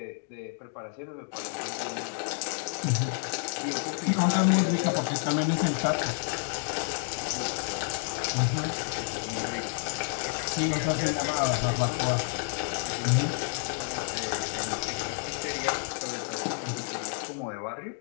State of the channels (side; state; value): right; silent; 58 dB below the other